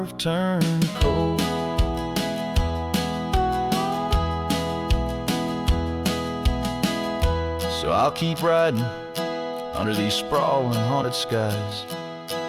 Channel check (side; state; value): both; identical; correlation 1.00